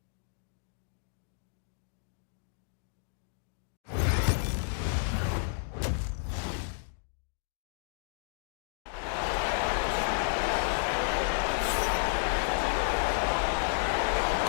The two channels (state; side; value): silent; right; digital silence